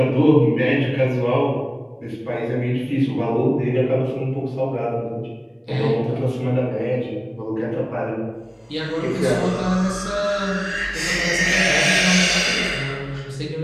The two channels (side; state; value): both; identical; correlation 1.00